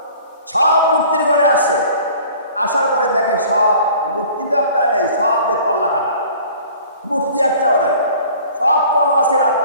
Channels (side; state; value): both; inverted; correlation -0.48